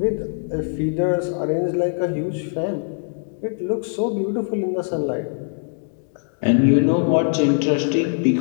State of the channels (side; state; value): right; silent; digital silence